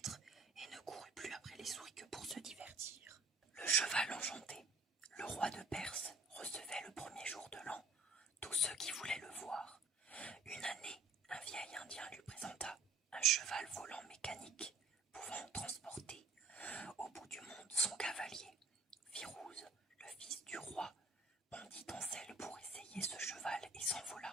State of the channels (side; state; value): left; quieter; 3.4 dB